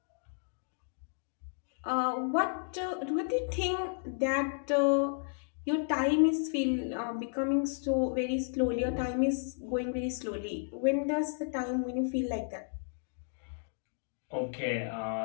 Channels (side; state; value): right; silent; digital silence